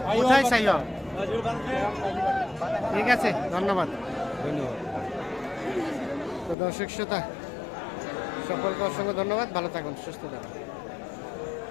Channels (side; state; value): right; drops out; at 6.6 s